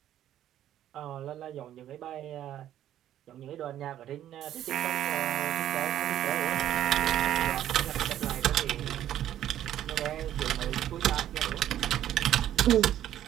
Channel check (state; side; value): quieter; left; 11.7 dB